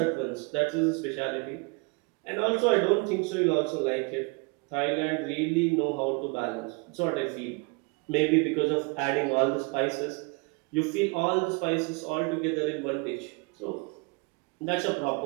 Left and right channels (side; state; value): left; quieter; 30.2 dB